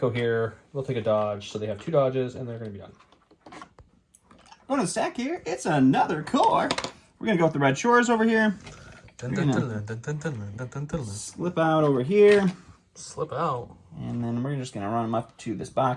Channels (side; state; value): both; identical; correlation 1.00